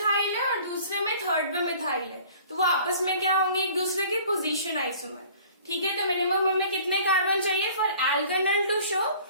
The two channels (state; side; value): inverted; both; correlation -0.49